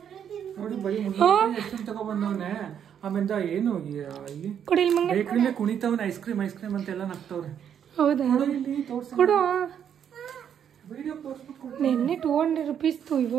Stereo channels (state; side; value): quieter; left; 8.7 dB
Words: ನೋಡಿ ಬರೀ ತಗೊಬಂದವನೆ. ಆಮೇಲೆ ಏನು ಕೊಡಿ ಬೇಕ್ರಿಲೇ ಕುಣಿತವನೆ. ಐಸ್ ಕ್ರೀಮ್ ಅಂತೆಲ್ಲ ನಗ್ತವ್ರೆ. ಹೌದಾ? ಕೊಡು. ನಿನ್ನೆ 200 ರೂಪೀಸ್ತು,